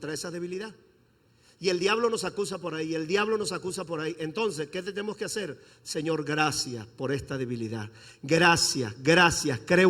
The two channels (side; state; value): both; identical; correlation 1.00